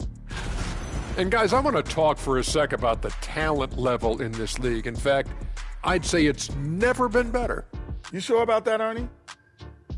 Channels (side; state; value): both; identical; correlation 1.00